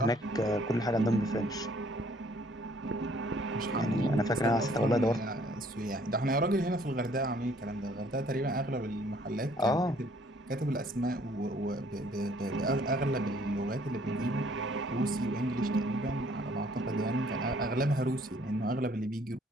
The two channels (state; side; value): normal; both; correlation 0.61